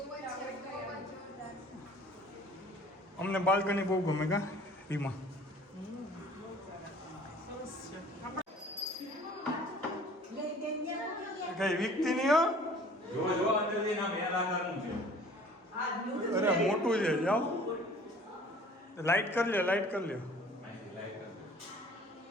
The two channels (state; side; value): normal; both; correlation 0.50